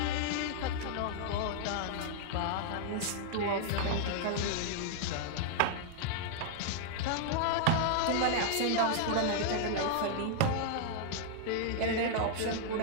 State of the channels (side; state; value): both; different; correlation -0.01